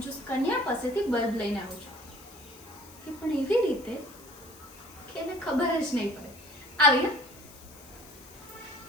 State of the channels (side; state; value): left; noise; hiss, 21 dB below the sound